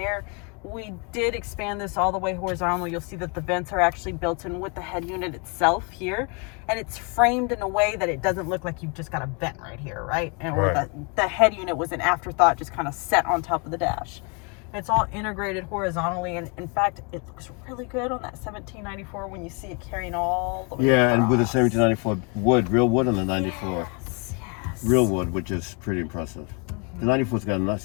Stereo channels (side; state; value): right; quieter; 34.0 dB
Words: We did expand this all the way horizontal. You'll see that the vents are actually built in with the head unit itself here, and it's framed in a way that it doesn't look like you've just got a vent right here, right? And or Right. the head unit was an afterthought, just kind of set on top of the dash. It's all integrated horizontally, and in fact, it looks really good on that 1794 when you see it carrying all the way Yeah, and with the across. 1794 wood, real wood on the 94. Yes. Real wood, which is pretty impressive. The 94's got a